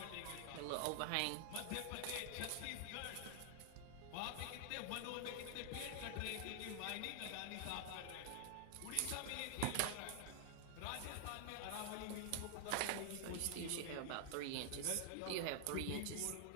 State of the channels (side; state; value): both; different; correlation 0.00